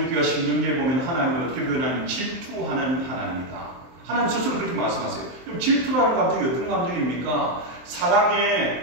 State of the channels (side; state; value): left; late; 23 ms